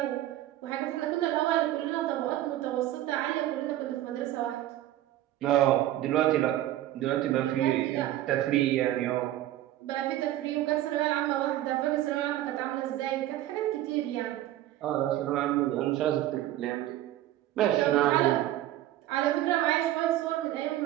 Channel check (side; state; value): left; quieter; 13.9 dB